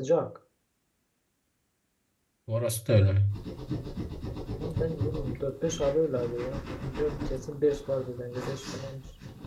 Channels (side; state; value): both; identical; correlation 1.00